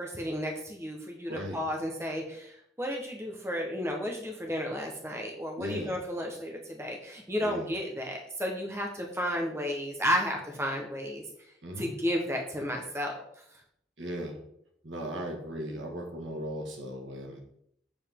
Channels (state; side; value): normal; both; correlation 0.59